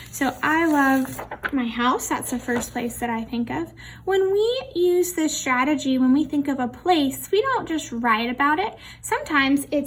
So I love my house. That's the first place that I think of. When we use this strategy, when we think of a place, we don't just write about it. Sometimes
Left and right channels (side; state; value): both; identical; correlation 1.00